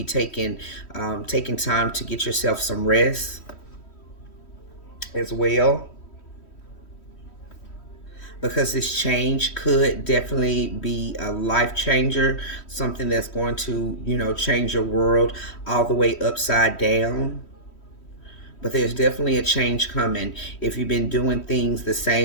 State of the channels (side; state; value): right; late; 3.1 ms